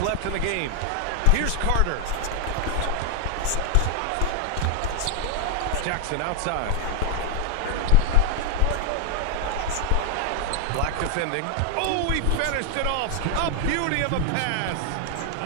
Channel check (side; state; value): both; different; correlation 0.00